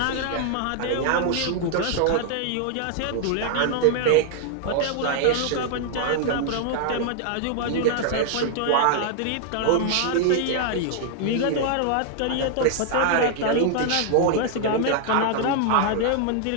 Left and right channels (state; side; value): different; both; correlation 0.00